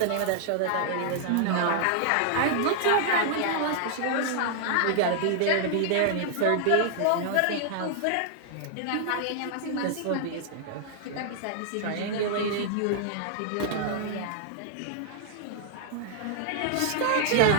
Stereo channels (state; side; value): different; both; correlation -0.01